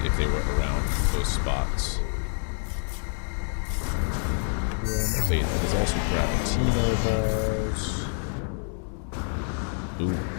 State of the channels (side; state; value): right; silent; 56 dB below the other